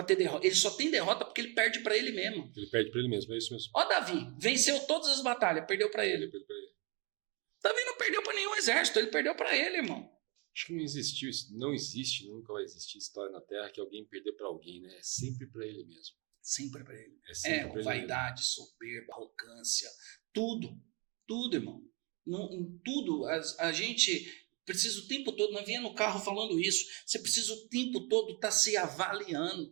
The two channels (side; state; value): left; quieter; 30.8 dB